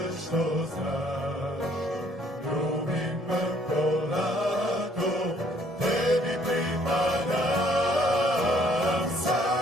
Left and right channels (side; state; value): both; normal; correlation 0.63